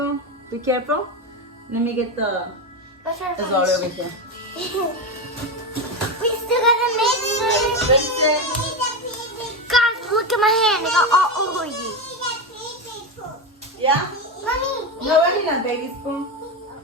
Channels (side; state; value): both; normal; correlation 0.15